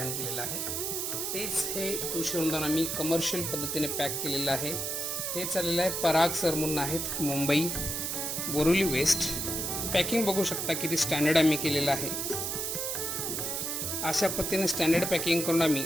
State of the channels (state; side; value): noise; right; hiss, 2 dB below the sound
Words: केलेलं आहे. तेच हे तुळशी वृंदावन आम्ही कमर्शियल पद्धतीने पॅक केलेलं आहे. हे चाललेलं आहे पराग सर म्हणून आहेत, मुंबई बोरिवली वेस्ट. पॅकिंग बघू शकता किती स्टँडर्ड आम्ही केलेलं आहे. अशा पद्धतीने स्टँडर्ड पॅकिंग करून आम्ही